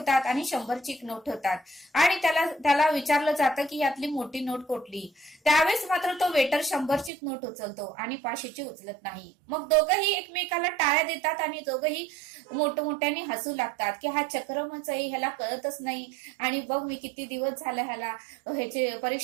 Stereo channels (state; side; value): drops out; left; at 7.1 s